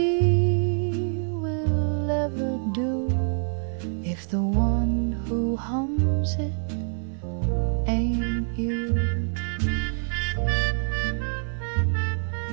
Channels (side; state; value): left; silent; 60 dB below the other